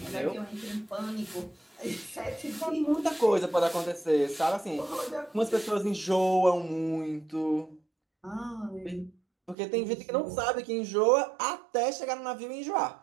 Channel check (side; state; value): left; drops out; at 9.6 s